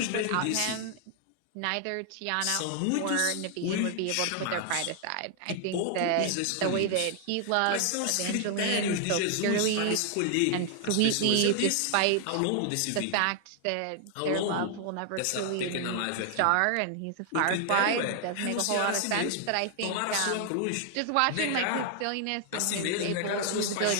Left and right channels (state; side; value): different; both; correlation 0.00